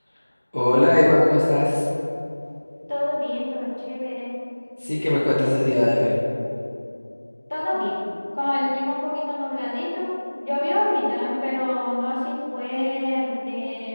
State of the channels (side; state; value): both; inverted; correlation -1.00